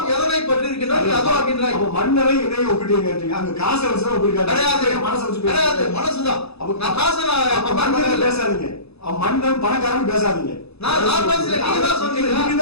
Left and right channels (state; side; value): late; right; 0.79 ms